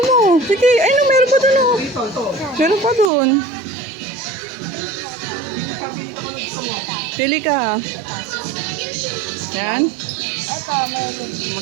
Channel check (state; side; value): drops out; left; at 3.1 s